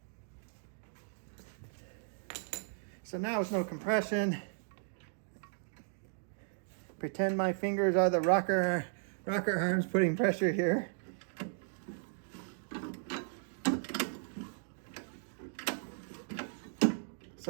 So now with no compression, Pretend my fingers are the rocker arms putting pressure here.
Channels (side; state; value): left; silent; digital silence